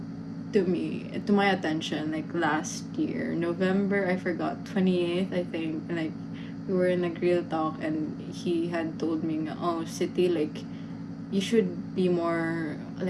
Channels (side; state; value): both; identical; correlation 1.00